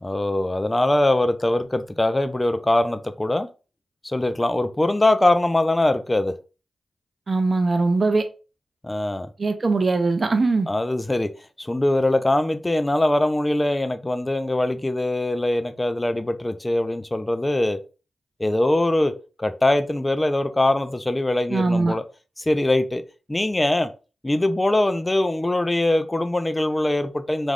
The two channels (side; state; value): both; normal; correlation 0.97